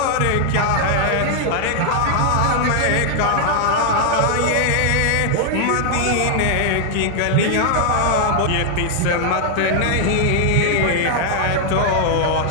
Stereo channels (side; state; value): both; different; correlation 0.00